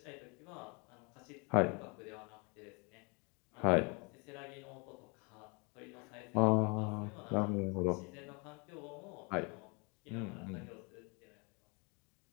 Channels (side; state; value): right; quieter; 32.0 dB